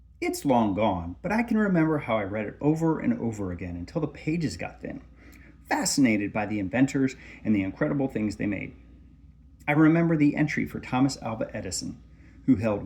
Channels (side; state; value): both; identical; correlation 1.00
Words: It's long gone, but I can remember how I read it over and over again until the pages got thin, fascinated by the inventors and the incredible things they made. I remember the entry for Thomas Alva Edison, who held